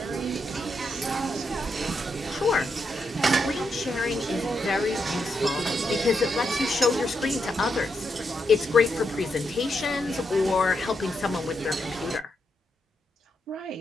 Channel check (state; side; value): normal; both; correlation 0.82